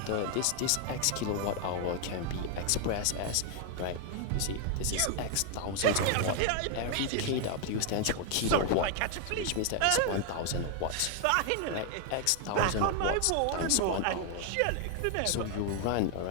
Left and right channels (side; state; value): both; different; correlation 0.00